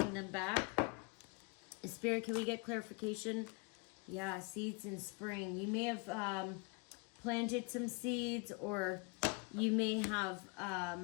them back. Spirit, can we get clarification? Yeah, seeds in spring. You may have planted some seeds, or you may have,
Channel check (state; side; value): quieter; right; 30.9 dB